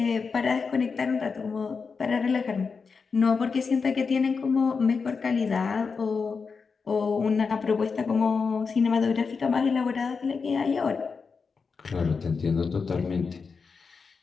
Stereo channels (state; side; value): quieter; right; 5.1 dB